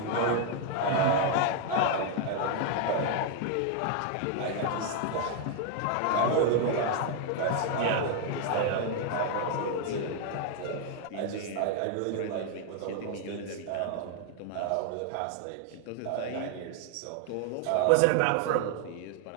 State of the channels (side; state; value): both; different; correlation 0.00